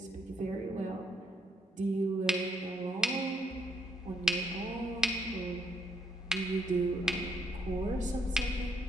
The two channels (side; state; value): both; normal; correlation 0.72